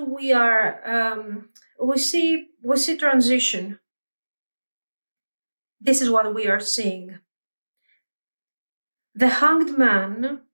we are, we see transition. This is what we are seeing. The Hanged Man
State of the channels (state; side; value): inverted; both; correlation -1.00